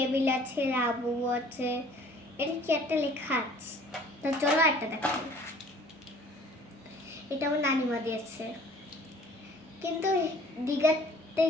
আছে, লাবু আছে, এটা কি একটা লেখা আছে। তো চলো একটা দেখাই। এটা আমার নানিমা দিয়েছে, কিন্তু দীঘাতে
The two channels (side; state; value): both; normal; correlation 0.53